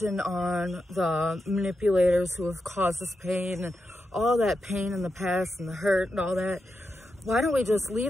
on the manipulators who have caused us pain and all that pain in the past and the hurt and all that, why don't we just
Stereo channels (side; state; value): both; normal; correlation 0.87